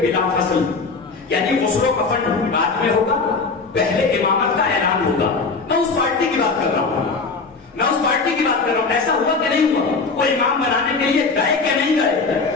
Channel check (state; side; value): quieter; right; 4.3 dB